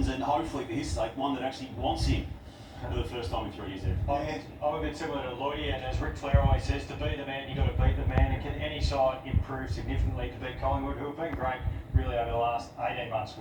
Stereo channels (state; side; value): identical; both; correlation 1.00